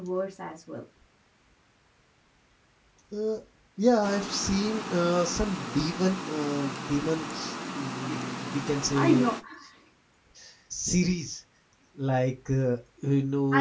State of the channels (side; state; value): both; identical; correlation 1.00